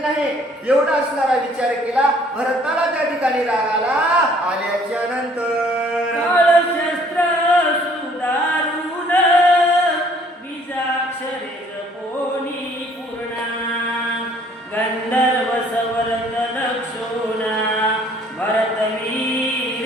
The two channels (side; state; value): both; normal; correlation 0.59